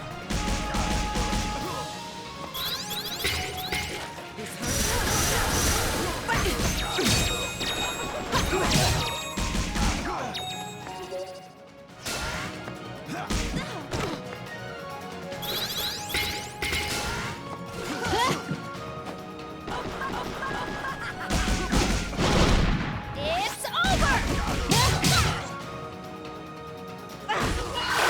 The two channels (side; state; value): both; identical; correlation 1.00